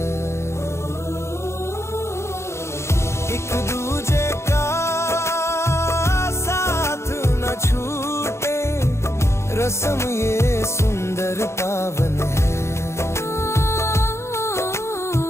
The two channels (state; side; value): late; right; 0.13 ms